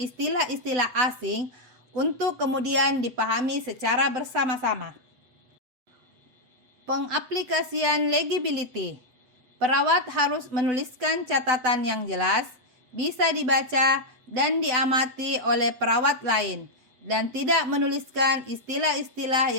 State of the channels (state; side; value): late; left; 8.1 ms